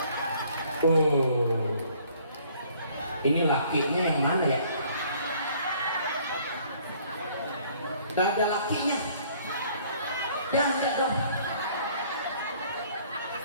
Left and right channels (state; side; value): inverted; both; correlation -0.59